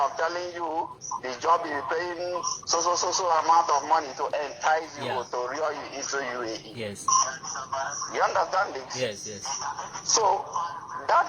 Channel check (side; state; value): both; identical; correlation 1.00